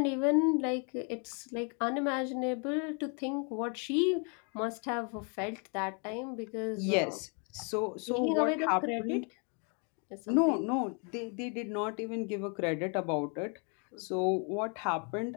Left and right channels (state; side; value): quieter; right; 37.9 dB